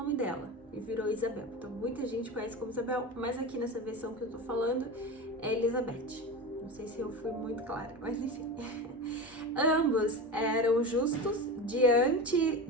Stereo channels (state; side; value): normal; both; correlation 0.26